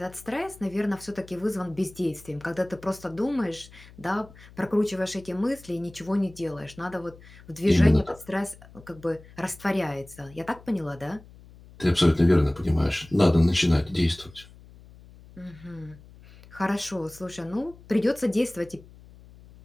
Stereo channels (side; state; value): left; noise; hum, 21 dB below the sound